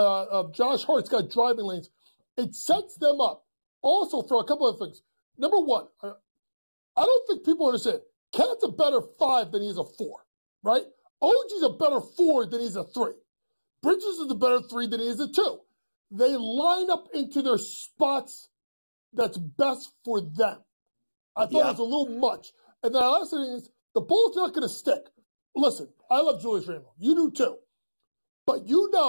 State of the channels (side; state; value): both; inverted; correlation -1.00